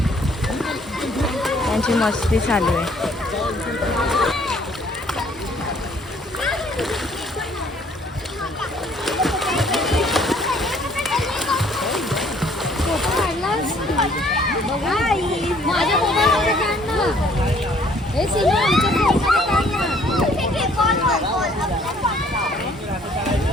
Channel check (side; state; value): both; normal; correlation 0.61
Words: त्यांची मस्ती चालू आहे.